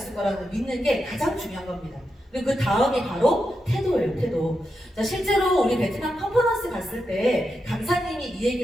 거라는 걸 믿는 게 가장 중요한 겁니다. 그리고 그 다음이 바로 태도예요, 태도. 자, 실제로 우리 베트남 컨퍼런스 갔을 때 강사님이 이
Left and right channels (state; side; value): normal; both; correlation 0.87